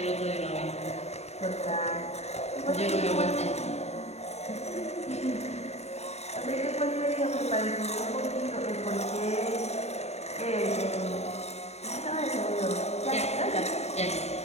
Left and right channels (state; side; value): late; right; 0.31 ms